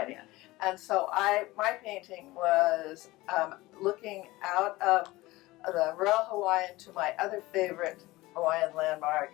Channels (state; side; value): quieter; right; 19.5 dB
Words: And so my painting was looking out of the Royal Hawaiian to my other favorite Hawaiian landmark,